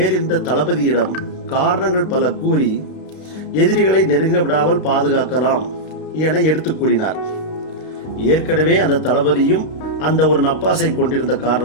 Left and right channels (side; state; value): right; late; 32 ms